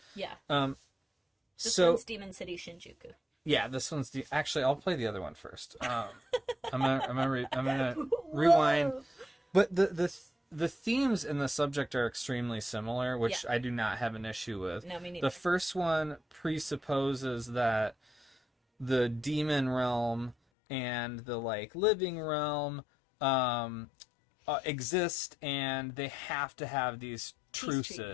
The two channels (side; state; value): right; drops out; at 20.4 s